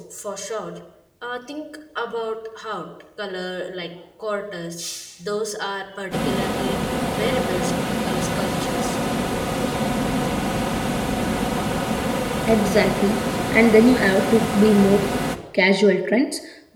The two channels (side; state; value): both; identical; correlation 1.00